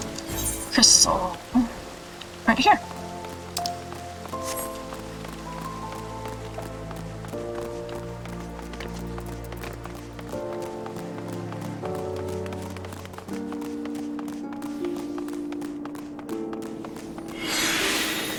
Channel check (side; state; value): both; identical; correlation 1.00